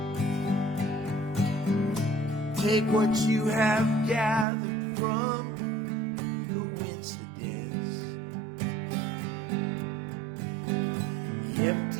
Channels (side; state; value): left; drops out; at 4.5 s